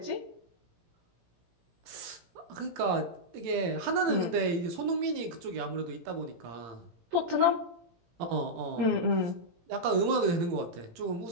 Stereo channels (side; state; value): left; late; 17 ms